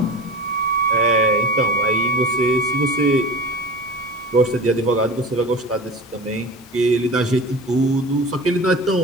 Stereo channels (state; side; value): normal; both; correlation 0.34